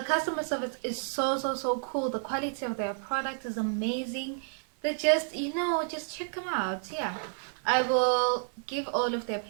customer service is so cool. The quality of their product is amazing. They just, just check them out. Yeah, I will give all of their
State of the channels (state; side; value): silent; left; 58 dB below the other